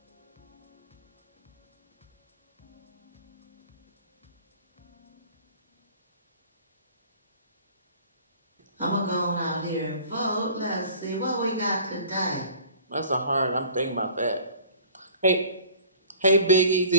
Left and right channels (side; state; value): both; inverted; correlation -0.48